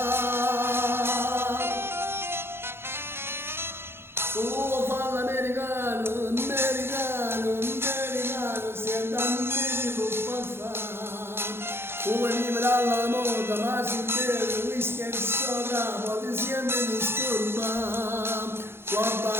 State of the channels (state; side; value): late; left; 0.11 ms